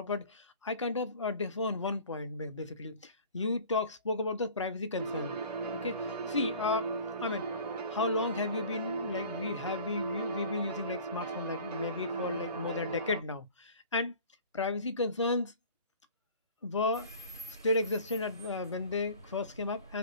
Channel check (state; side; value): inverted; both; correlation -0.45